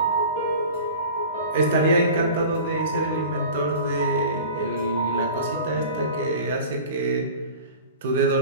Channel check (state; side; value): inverted; both; correlation -0.38